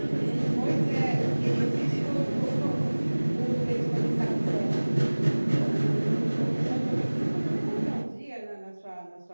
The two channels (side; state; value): both; inverted; correlation -1.00